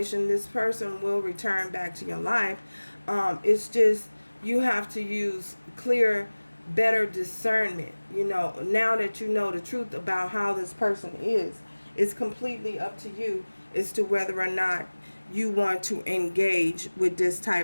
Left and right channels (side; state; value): both; inverted; correlation -1.00